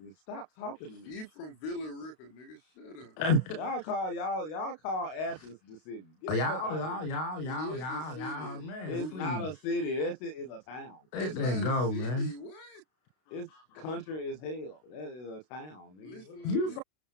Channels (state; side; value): late; right; 32 ms